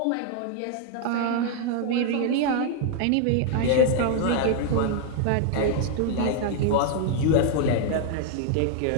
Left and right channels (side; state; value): both; different; correlation 0.00